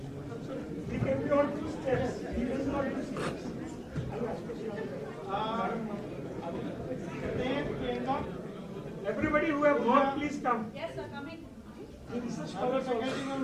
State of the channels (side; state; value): both; identical; correlation 1.00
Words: We can be on 2 steps. We will not do steps. Everybody who have worked, please come. Yes, sir, coming. The research scholars also.